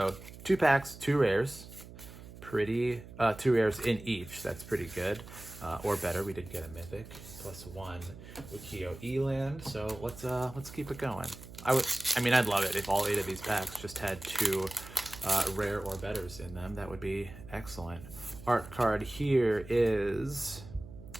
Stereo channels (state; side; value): noise; right; hum, 16 dB below the sound